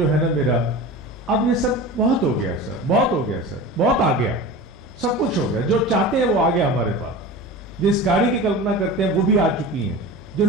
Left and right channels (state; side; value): normal; both; correlation 0.32